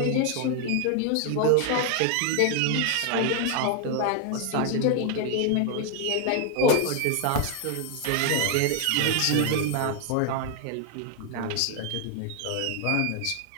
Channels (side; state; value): both; different; correlation 0.00